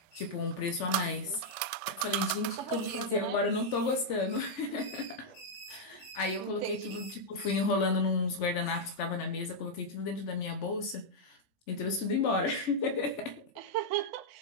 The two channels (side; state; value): right; late; 3.4 ms